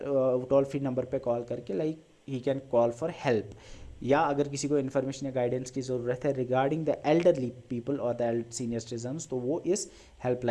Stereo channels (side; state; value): both; identical; correlation 1.00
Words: फ्री नंबर पे कॉल करके like he can call for help, या अगर किसी को इन्फॉर्मेशन या गाइडेंस की ज़रूरत है रिगार्डिंग द एल्डरली पीपल और द सीनियर सिटीजन्स, तो वो इस